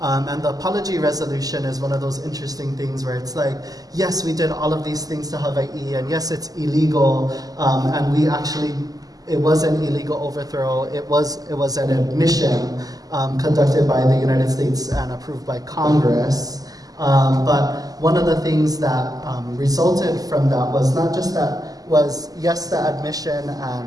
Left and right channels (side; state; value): left; late; 0.17 ms